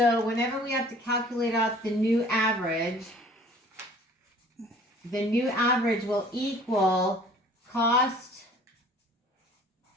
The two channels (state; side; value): normal; both; correlation 0.51